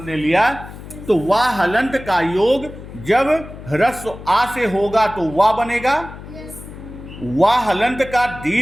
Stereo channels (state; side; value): noise; left; hum, 14 dB below the sound